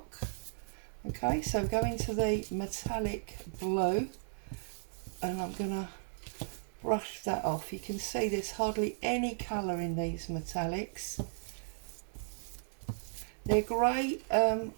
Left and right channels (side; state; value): left; silent; digital silence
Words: Okay, so go into the metallic blue, and I'm going to brush that off. You can see there's hardly any colour in these metallics. They're great